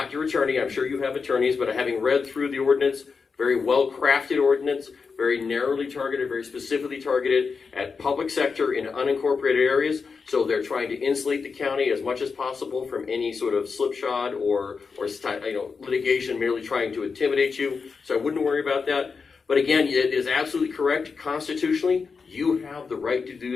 your attorney. I'm sure you have attorneys, but having read through the ordinance, very well-crafted ordinance, very narrowly targeted, very specifically targeted at public sector in unincorporated areas. So they're trying to insulate the county as much as possible from any sort of slipshod or litigation merely trying to intimidate you. So I wouldn't worry about that. But again, it is absolutely correct constitutionally. You have the right to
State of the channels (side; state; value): right; quieter; 5.1 dB